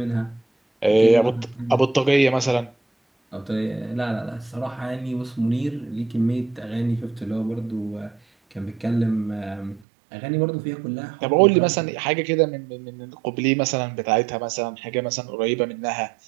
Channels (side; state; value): left; drops out; at 9.8 s